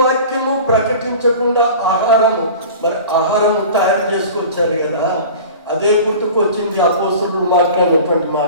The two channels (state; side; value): inverted; both; correlation -0.39